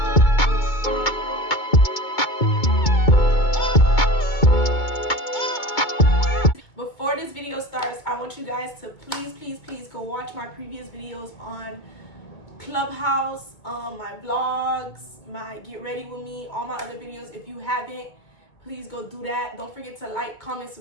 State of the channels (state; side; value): late; right; 2.2 ms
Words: Before this video starts, I want you guys to please go watch my previous videos on Clubhouse, my vlogs, my get ready with me, all my other videos. If you haven't, please go do that. Don't forget to like, comment,